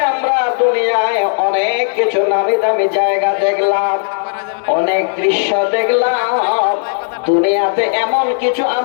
আমরা দুনিয়ায় অনেক কিছু নামি দামি জায়গা দেখলাম, অনেক দৃশ্য দেখলাম। দুনিয়াতে এমন কিছু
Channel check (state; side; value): silent; right; digital silence